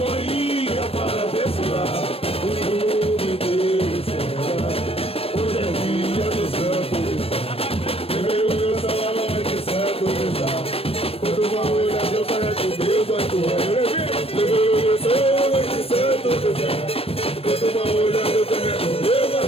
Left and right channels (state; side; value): late; right; 0.28 ms